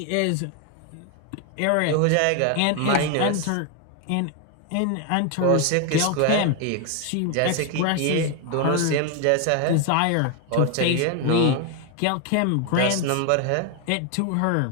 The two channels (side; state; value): both; different; correlation 0.01